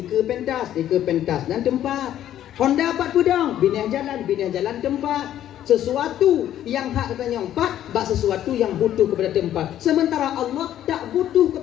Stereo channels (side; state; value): right; quieter; 11.6 dB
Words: pentas dan tempat. Honda 4 pudong, binah jalan tempat. Sesuatu yang hak katanya empat, bak sesuatu yang butuh kepada tempat. Sementara Allah tak butuh